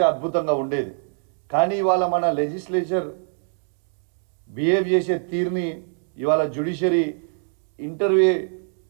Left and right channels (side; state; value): left; silent; digital silence